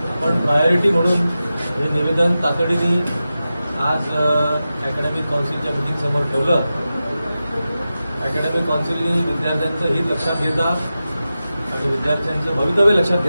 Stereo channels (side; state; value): both; inverted; correlation -0.93